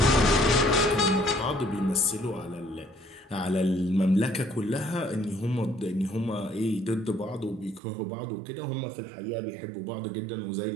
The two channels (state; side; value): drops out; left; at 7.8 s